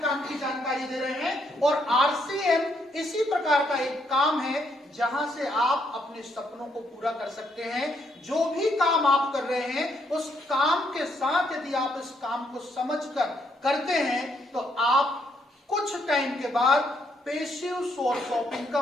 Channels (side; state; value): both; normal; correlation 0.73